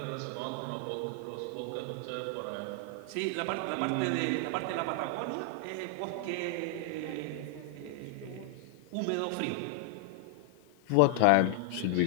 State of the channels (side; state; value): both; different; correlation 0.00